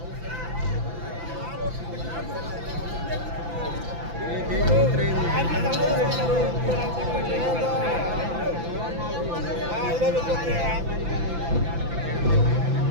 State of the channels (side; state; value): left; late; 5.9 ms